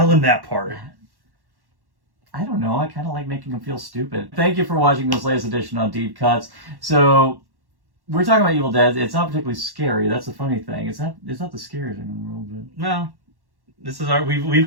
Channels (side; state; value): left; late; 1.1 ms